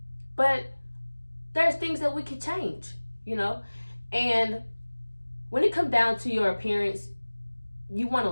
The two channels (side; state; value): both; inverted; correlation -1.00